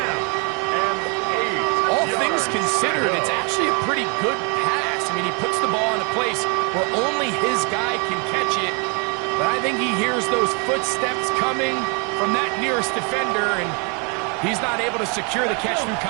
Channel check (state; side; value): quieter; left; 34.7 dB